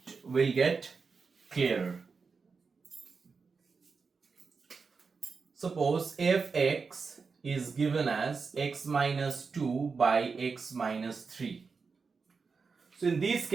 will get clearer. Suppose if x is given as x minus 2 by x minus 3. So in this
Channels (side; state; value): left; quieter; 5.0 dB